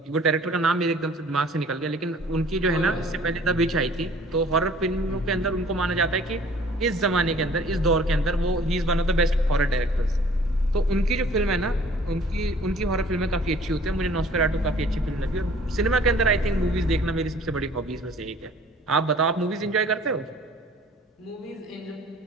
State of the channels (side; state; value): both; normal; correlation 0.52